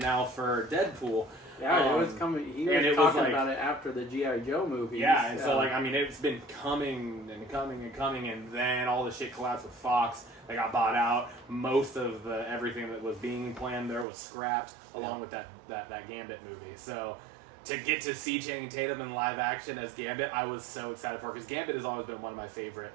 for Deadpool. Yeah, it was coming. He was talking about it after the G.I. Joe movie. Yeah, and so it's been coming and coming and coming, and then all the shit collapsed with Fox. They got bought out. Most of everything that was being planned there was scrapped, along with that Gambit movie. So to get to see Channing Tatum in live action as Gambit, I was so excited for, because Gambit has always been one of my favorite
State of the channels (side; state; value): left; drops out; at 14.1 s